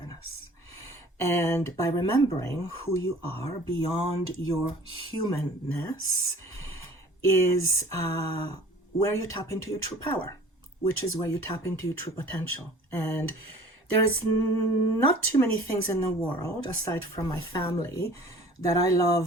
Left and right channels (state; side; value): normal; both; correlation 0.48